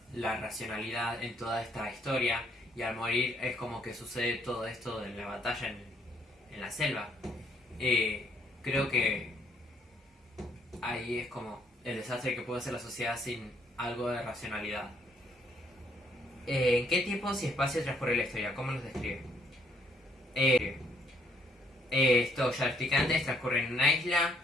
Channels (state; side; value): normal; both; correlation 0.67